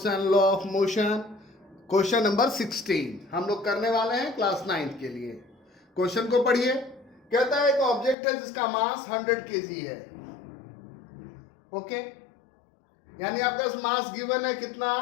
and law of motion. Question number 16 हम लोग करने वाले हैं क्लास 9 के लिए। क्वेश्चन को पढ़िए। कहता है एक ऑब्जेक्ट है जिसका मास 100 केजी है। ओके, यानी आपका मास गिवन है कितना,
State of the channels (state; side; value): drops out; right; at 8.2 s